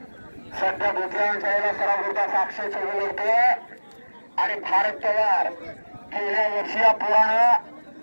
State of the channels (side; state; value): both; inverted; correlation -1.00